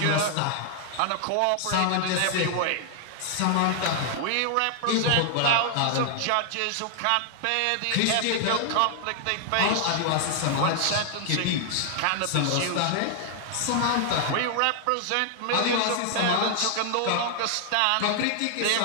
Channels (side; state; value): both; different; correlation 0.00